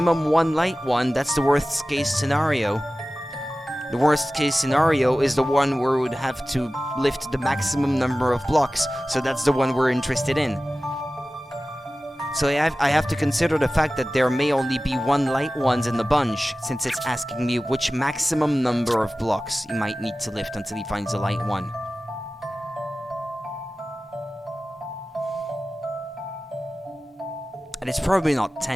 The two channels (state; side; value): normal; both; correlation 0.96